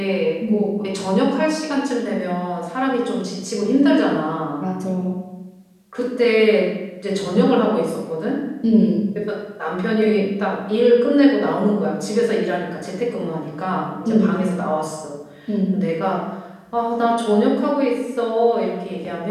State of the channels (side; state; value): both; identical; correlation 1.00